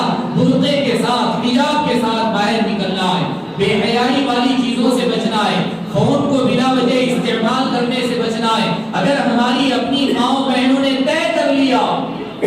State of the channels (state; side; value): identical; both; correlation 1.00